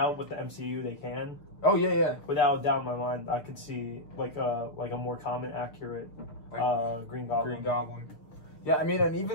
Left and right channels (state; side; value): late; right; 6.7 ms